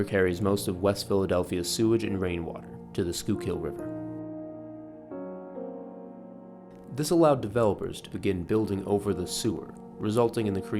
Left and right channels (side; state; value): both; identical; correlation 1.00